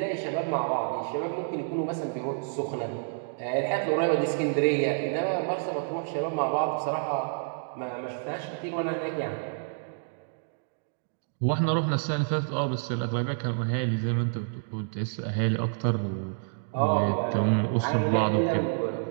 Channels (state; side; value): silent; left; digital silence